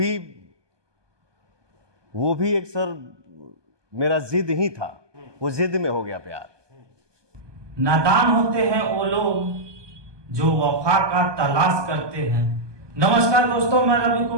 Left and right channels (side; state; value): left; late; 1.2 ms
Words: भी एक सर मेरा जिद ही था, वो जिद में हो गया प्यार। नादान होते हैं वो लोग जो वफा का तलाश करते हैं। नमस्कार दोस्तों, मैं रवि